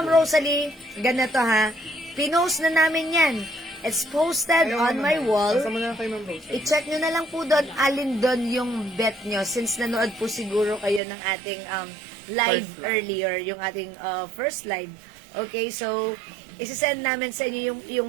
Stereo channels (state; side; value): drops out; left; at 11.0 s